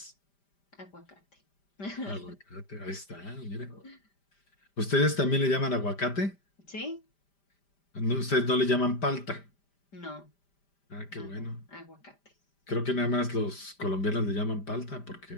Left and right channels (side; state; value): right; late; 5.0 ms